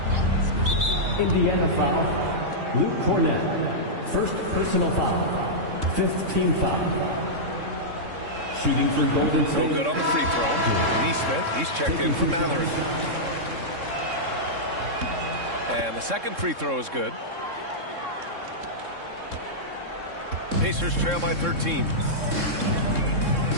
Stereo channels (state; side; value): late; left; 3.6 ms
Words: Indiana foul. Luke Cornett. First personal foul. Fifth team foul. Shooting for Golden State. No good on the free throw. Neesmith, he's checked in for Mathurin. And the second free throw is good. Pacers trail by 13.